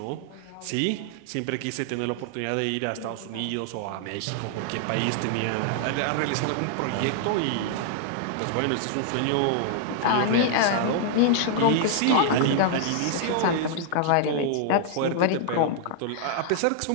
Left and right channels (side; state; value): both; different; correlation -0.01